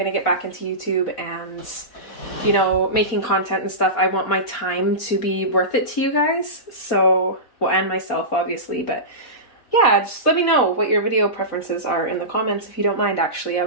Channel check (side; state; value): right; late; 4.0 ms